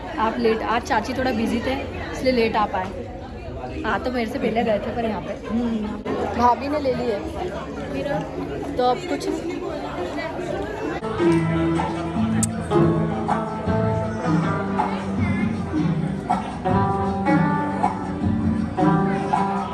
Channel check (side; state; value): both; identical; correlation 1.00